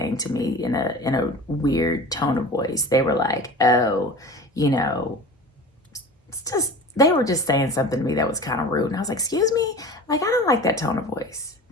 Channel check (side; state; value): both; normal; correlation 0.37